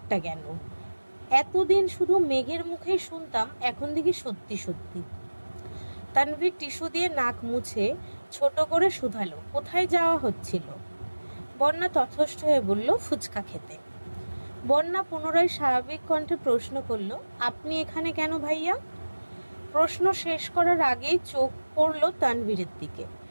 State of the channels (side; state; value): both; inverted; correlation -1.00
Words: কেন? এতদিন শুধু মেঘের মুখেই শুনতাম, এখন দেখি সত্যি সত্যি। তানভীর টিস্যু দিয়ে নাক মুছে ছোট করে শুধালো, কোথায় যাওয়া হচ্ছিল? বন্যা তথস্থ হয়ে বলল, ফুচকা খেতে। বন্যা পুনরায় স্বাভাবিক কণ্ঠে প্রশ্ন করল, আপনি এখানে কেন ভাইয়া? প্রশ্ন শেষ করার আগেই চোখ পড়ল তানভীরের দিকে।